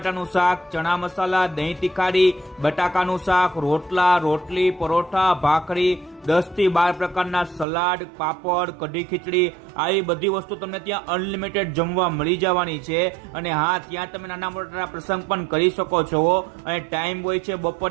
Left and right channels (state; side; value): drops out; left; at 7.7 s